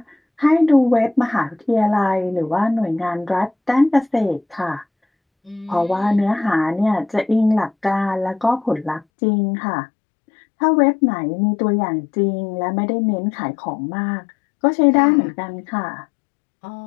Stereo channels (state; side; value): drops out; right; at 9.1 s